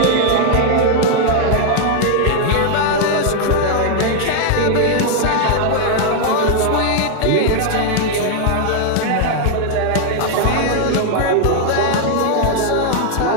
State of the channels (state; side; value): different; both; correlation 0.00